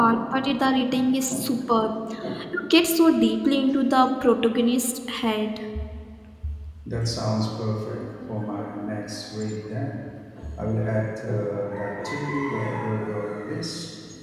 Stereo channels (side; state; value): both; identical; correlation 1.00